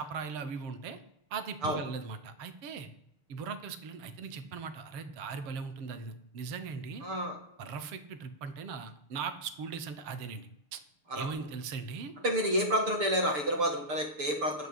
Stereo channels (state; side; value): late; left; 6.8 ms